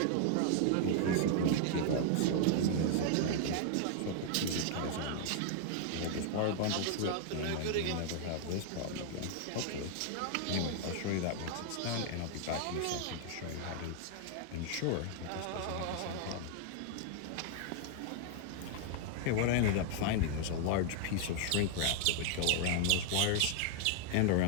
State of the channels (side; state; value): both; different; correlation 0.00